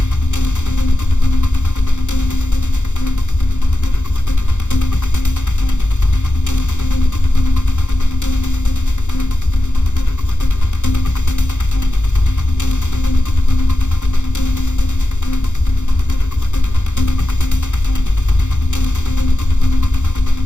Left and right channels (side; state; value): right; late; 0.84 ms